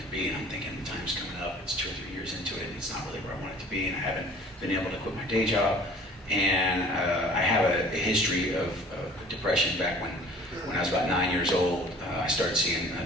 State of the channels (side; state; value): both; normal; correlation 0.49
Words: to be. And I'm thinking, the time's coming up. It's 2 or 3 years into it, and it's not really where I want it to be. And I haven't been able to quit my day job. And I have a history of depression. Back when I was about 9 years old, I started seeing a